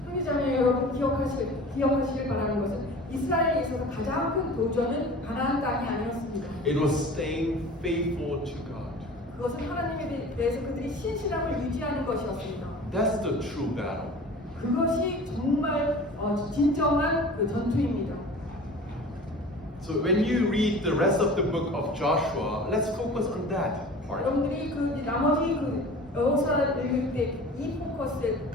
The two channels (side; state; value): both; normal; correlation 0.40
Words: 형제자매 여러분 기억하시길 바라는 것은 이스라엘에 있어서 가장 큰 도전은 가나안 땅이 아니었습니다. It was staying faithful to God. 그것은 하나님에 대해서 그들이 신실함을 유지하는 것이었습니다. That's the true battle. 그것이 정말 진정한 그 전투입니다. So when you read the rest of the book of Joshua, let's focus on that part. 여러분들이 나머지 여호수아를 읽을 때 이